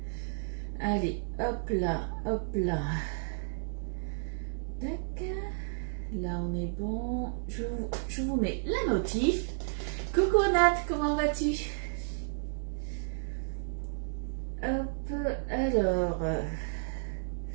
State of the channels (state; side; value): silent; left; digital silence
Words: allez, hop là, tac, là on est bon, je vous mets la notif. Coucou Nat, comment vas-tu? Hop, alors,